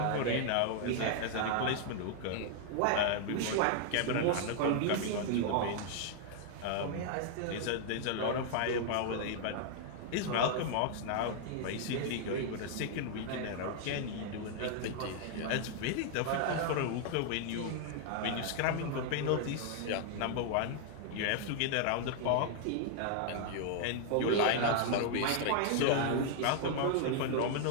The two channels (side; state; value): both; different; correlation 0.00